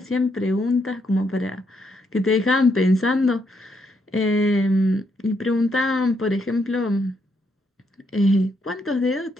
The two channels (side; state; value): both; normal; correlation 0.76